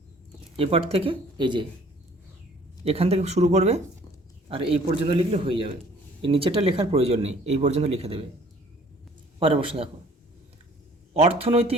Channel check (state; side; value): normal; both; correlation 0.55